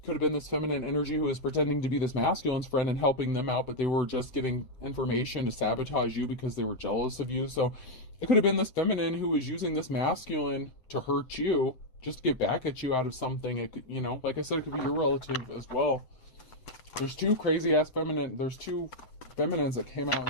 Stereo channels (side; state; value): right; late; 7.8 ms